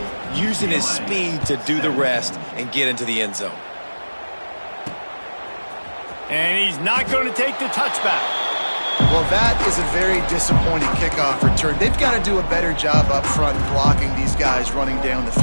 using his speed to do the rest and get into the end zone. And he's not going to take the touchback. Well, that is a very disappointing kickoff return. They've got to do a better job up front blocking these guys running down the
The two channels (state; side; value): inverted; both; correlation -1.00